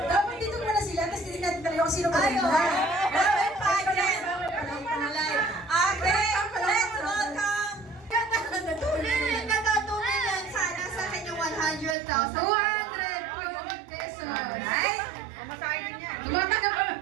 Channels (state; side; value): drops out; left; at 12.0 s